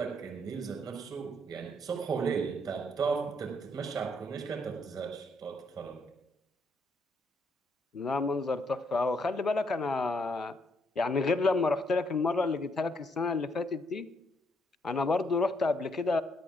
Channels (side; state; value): both; normal; correlation 0.73